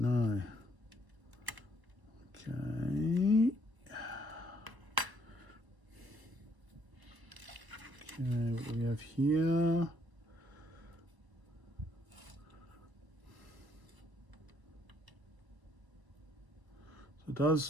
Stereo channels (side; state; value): left; late; 1.2 ms